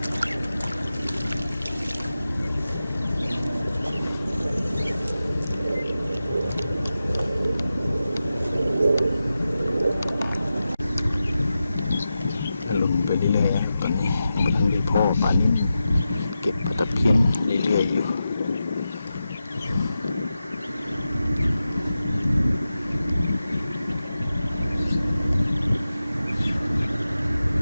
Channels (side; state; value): both; inverted; correlation -0.91